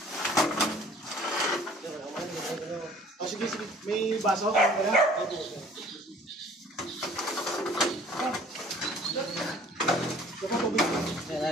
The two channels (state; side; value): normal; both; correlation 0.52